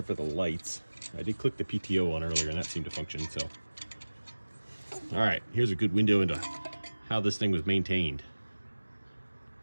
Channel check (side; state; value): both; inverted; correlation -1.00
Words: for the lights. I did click the PTO on earlier and that seemed to function, so. All right, here's a good window into how this thing was maintained.